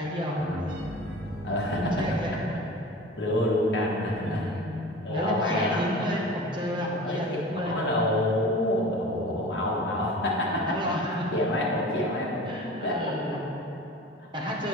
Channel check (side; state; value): both; normal; correlation 0.37